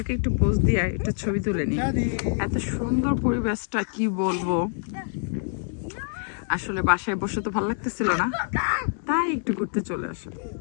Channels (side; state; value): right; silent; digital silence